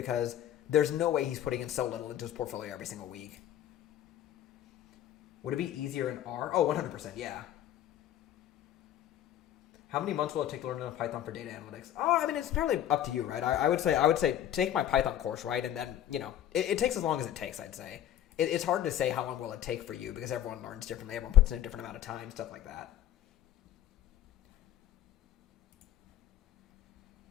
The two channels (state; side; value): quieter; right; 11.6 dB